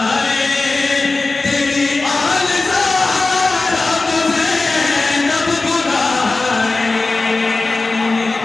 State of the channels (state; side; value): quieter; right; 3.5 dB